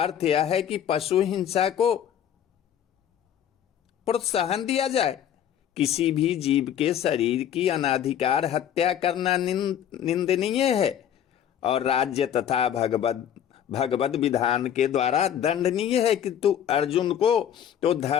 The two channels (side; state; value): right; quieter; 9.8 dB